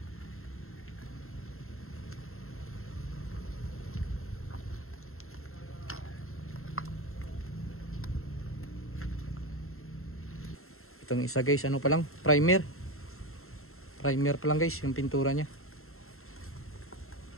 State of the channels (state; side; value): late; right; 0.62 ms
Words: Itong isa guys, ano pa lang, primer pa lang guys yung pintura nya,